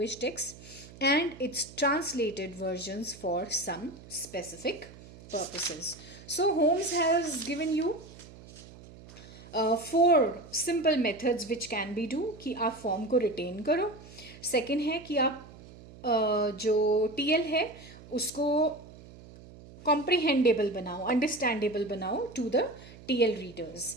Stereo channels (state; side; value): noise; right; hum, 19 dB below the sound